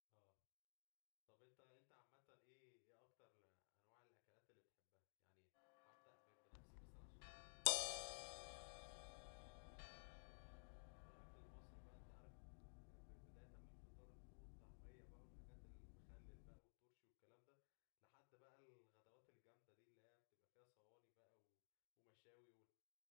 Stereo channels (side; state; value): right; silent; digital silence